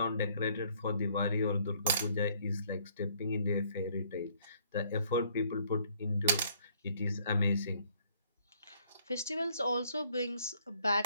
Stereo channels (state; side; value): inverted; both; correlation -0.64